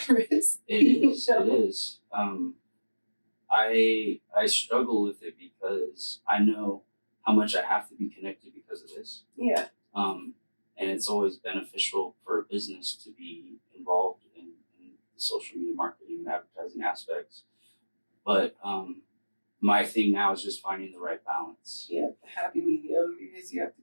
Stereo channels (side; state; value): both; inverted; correlation -1.00